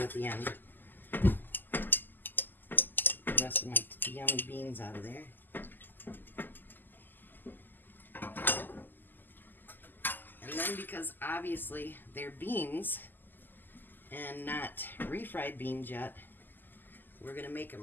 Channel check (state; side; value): late; right; 0.090 ms